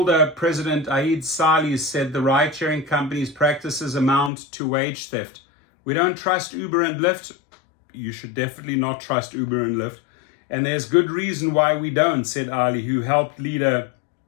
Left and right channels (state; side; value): drops out; right; at 4.3 s